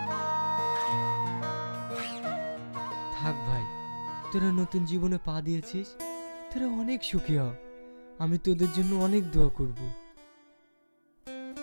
থাক ভাই, তোরা নতুন জীবনে পা দিয়েছিস, তোরা অনেক সুখী হ, আমি তোদের জন্য অনেক দোয়া করব।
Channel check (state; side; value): inverted; both; correlation -1.00